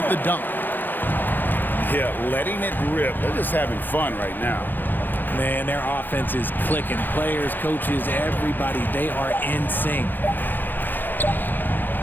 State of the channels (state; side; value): late; right; 0.090 ms